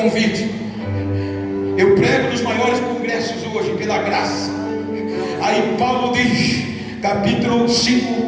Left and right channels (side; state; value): both; identical; correlation 1.00